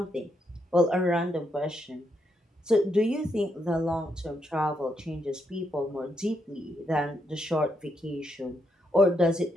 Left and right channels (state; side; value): normal; both; correlation 0.79